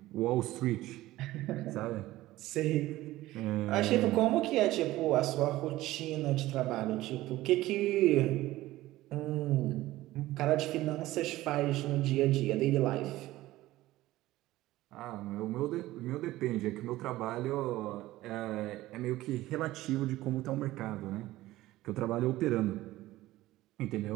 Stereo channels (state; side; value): quieter; left; 16.7 dB